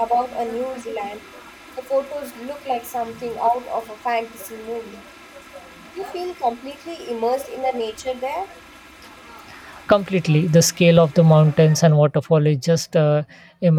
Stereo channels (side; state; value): both; identical; correlation 1.00